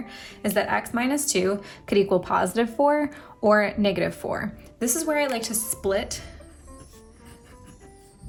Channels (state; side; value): identical; both; correlation 1.00